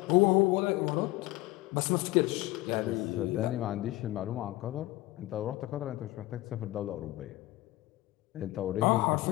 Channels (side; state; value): right; quieter; 18.2 dB